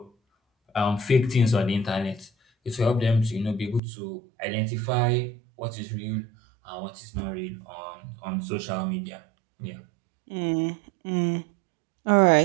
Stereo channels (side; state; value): left; drops out; at 3.8 s